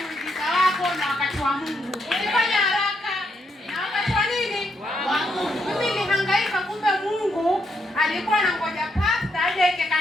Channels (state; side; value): normal; both; correlation 0.78